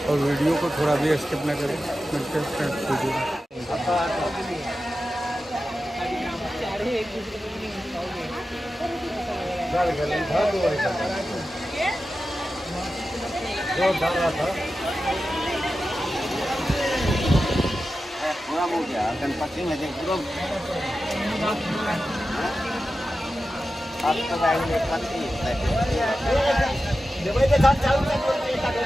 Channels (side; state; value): both; normal; correlation 0.92